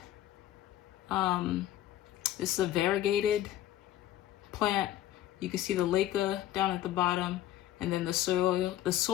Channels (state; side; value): quieter; right; 13.3 dB